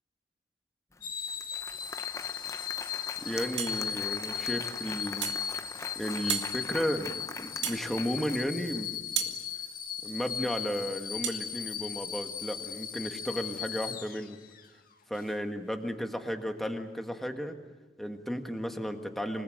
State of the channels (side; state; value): both; normal; correlation 0.64